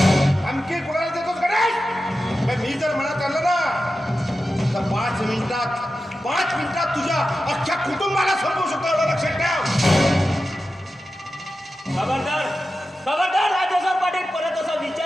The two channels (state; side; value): normal; both; correlation 0.92